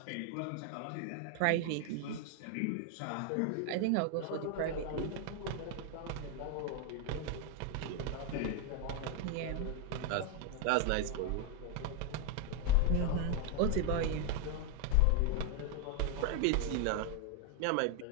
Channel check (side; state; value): both; different; correlation 0.01